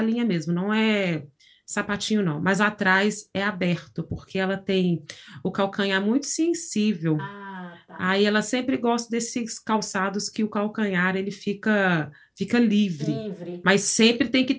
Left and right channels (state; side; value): identical; both; correlation 1.00